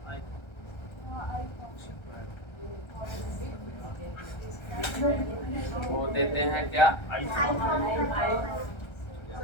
वो देते हैं क्या, आई फॉर्म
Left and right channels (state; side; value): late; right; 1.3 ms